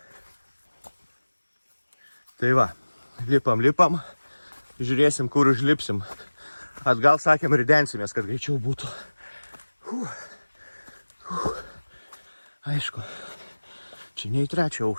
Tai va, lipam. Žiūrėsim, kur užlipsim. Atgal sakėm, ridensimės, kad greičiau būtų. Aišku, čia ne į 3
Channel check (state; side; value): inverted; both; correlation -1.00